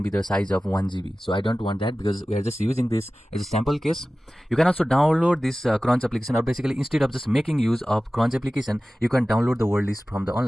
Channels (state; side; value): normal; both; correlation 0.96